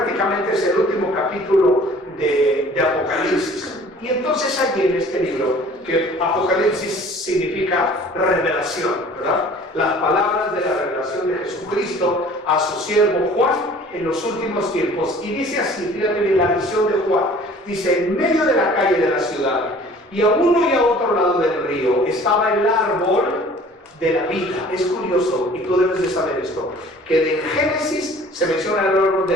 es el último capítulo de Apocalipsis. Y entonces allí en este libro, que Apocalipsis significa revelación, ¿verdad? Las palabras de la revelación de Jesucristo a su siervo Juan en los últimos tiempos. Y dice así, fíjate bien la visión de Juan, dice, en medio de la calle de la ciudad, y a uno y a otro lado del río, estaba el árbol de la vida. Es curioso, y tú debes de saber esto, que en Génesis se menciona el árbol de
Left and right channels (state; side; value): normal; both; correlation 0.49